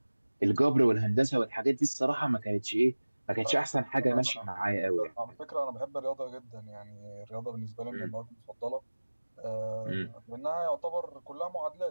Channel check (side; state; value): both; inverted; correlation -1.00